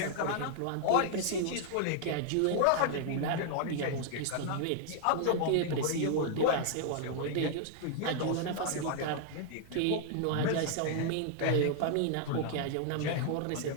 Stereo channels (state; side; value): different; both; correlation -0.01